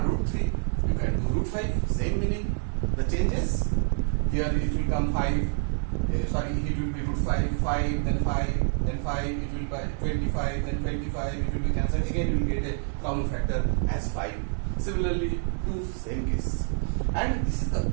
root 3, you can do root 5, same meaning. The changes, here it will come 5, it will be root 5, 5, then 5, then 5, it will be 25, then 25, it will be cancelled. Again, you will get a common factor as 5. Similarly, 2, same case. And this is the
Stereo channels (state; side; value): silent; left; 60 dB below the other